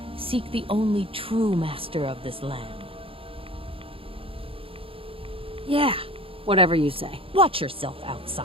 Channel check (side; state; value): left; late; 0.27 ms